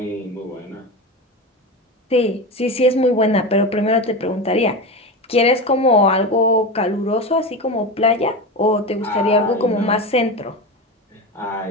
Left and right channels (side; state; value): both; normal; correlation 0.22